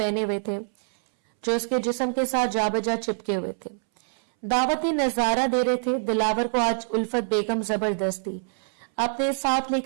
हुए थे जो इसके जिस्म के साथ जाबजा चिपके हुए थे। दावती नजारा दे रहे थे। दिलावर को आज उल्फत बेगम जबरदस्ती अपने साथ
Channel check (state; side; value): silent; left; 62 dB below the other